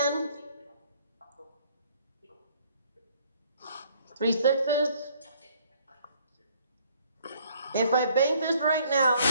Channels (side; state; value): both; inverted; correlation -0.62